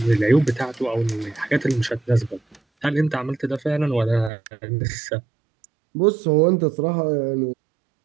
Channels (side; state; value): left; drops out; at 4.3 s